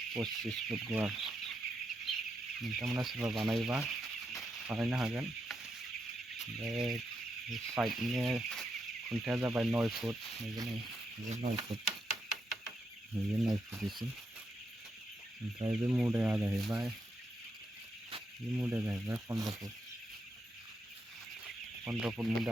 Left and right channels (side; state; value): both; normal; correlation 0.82